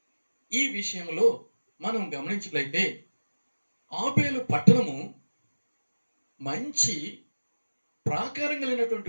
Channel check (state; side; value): inverted; both; correlation -1.00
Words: ఈ విషయంలో మనం గమనించినట్లయితే ఆబేలు పట్టణము మంచి ప్రాకారం